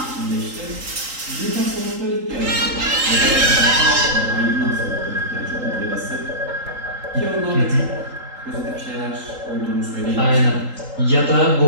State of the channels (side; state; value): left; late; 3.8 ms